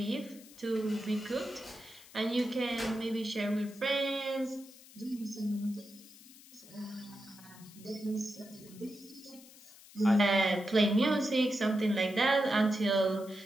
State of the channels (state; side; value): noise; left; hiss, 21 dB below the sound